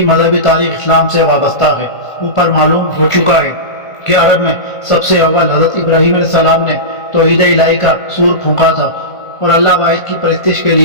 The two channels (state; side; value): late; right; 1.5 ms